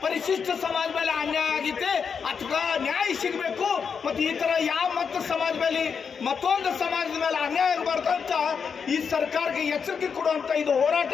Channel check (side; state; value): right; quieter; 6.3 dB